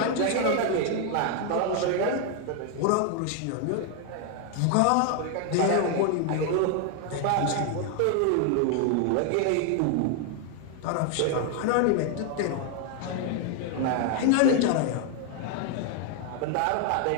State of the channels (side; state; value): both; different; correlation 0.00